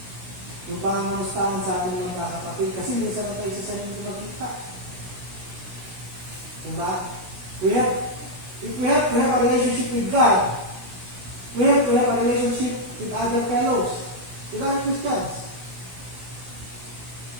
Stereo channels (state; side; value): late; left; 16 ms